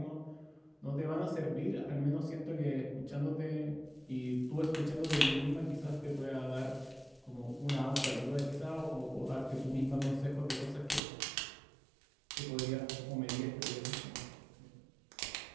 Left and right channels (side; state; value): left; drops out; at 11.0 s